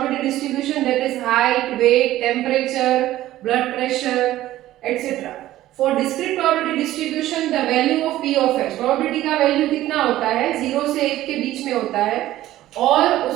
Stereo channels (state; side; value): quieter; left; 14.7 dB